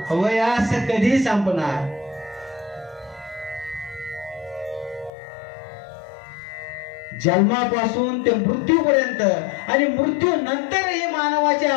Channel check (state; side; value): drops out; right; at 5.1 s